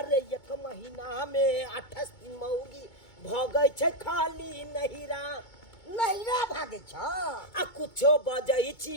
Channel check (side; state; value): right; late; 2.2 ms